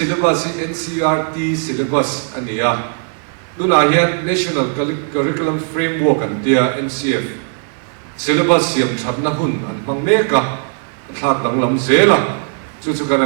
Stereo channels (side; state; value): left; silent; 57 dB below the other